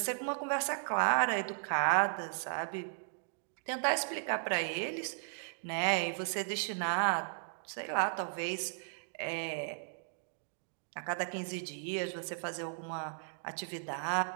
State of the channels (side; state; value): left; silent; digital silence